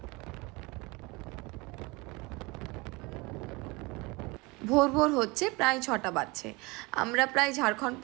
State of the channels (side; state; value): left; quieter; 25.2 dB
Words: ভোর ভোর হচ্ছে, প্রায় 6টা বাজছে। আমরা প্রায় ঝাড়খণ্ড